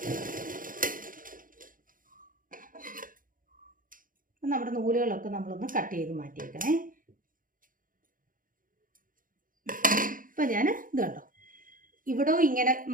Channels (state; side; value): late; left; 0.40 ms